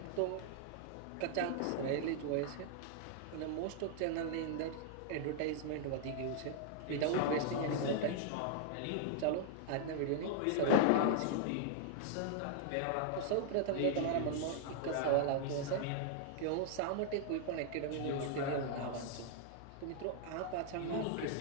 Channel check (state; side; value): different; both; correlation -0.01